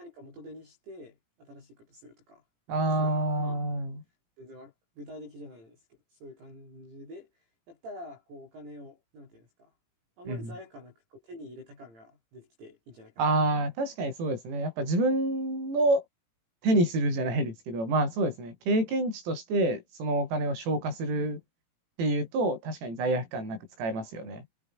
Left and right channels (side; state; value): left; late; 18 ms